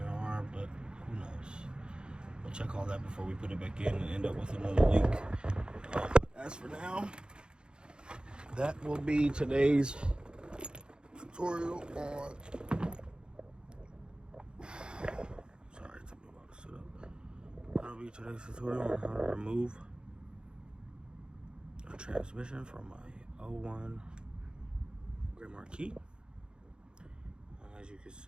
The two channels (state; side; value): late; left; 0.050 ms